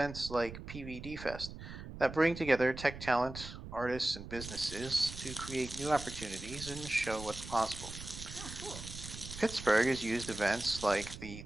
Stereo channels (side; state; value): right; noise; rumble, 11 dB below the sound